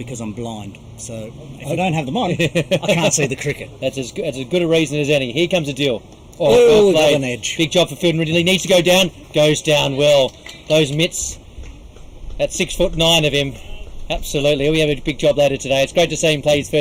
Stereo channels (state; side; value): identical; both; correlation 1.00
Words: I'm blind. So if I don't have them on, I can't see the cricket. That's as good a reason as any. Here comes a deal. Oh, got an edge. Big job for Fielden Ridley. Needs to go down. Goes down well. Those mitts. That's 6'9" of him. Absolutely. He'll have a big job later today. It's great to see him play his